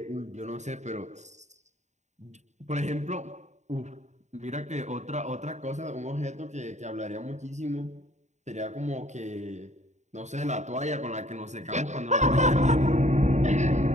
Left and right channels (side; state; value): left; late; 0.34 ms